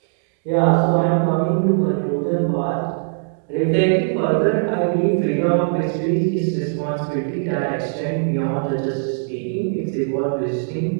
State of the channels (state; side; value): silent; left; 66 dB below the other